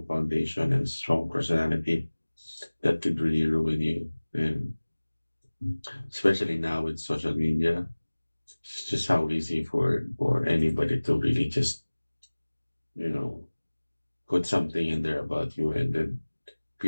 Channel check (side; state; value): both; inverted; correlation -1.00